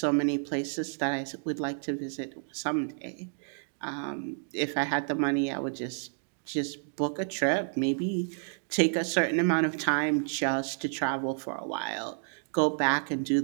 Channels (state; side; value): silent; left; 58 dB below the other